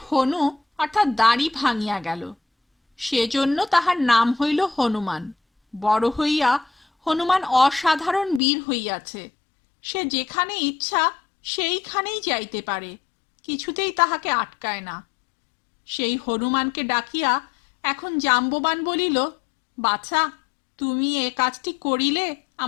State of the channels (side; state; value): right; drops out; at 8.4 s